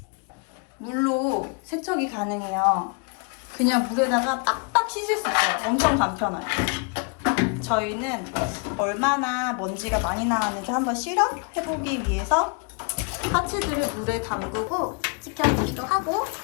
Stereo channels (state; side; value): quieter; right; 33.4 dB